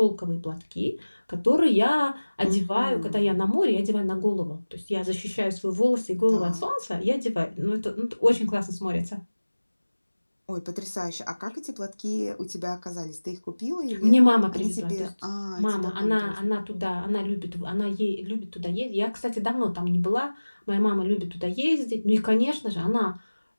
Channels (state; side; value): inverted; both; correlation -1.00